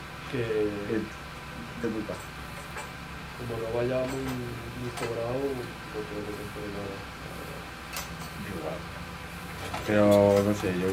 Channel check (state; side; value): identical; both; correlation 1.00